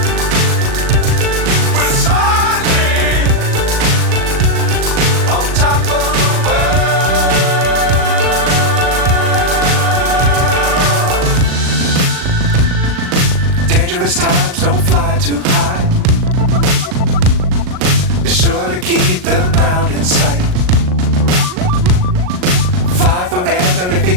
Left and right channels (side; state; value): left; late; 38 ms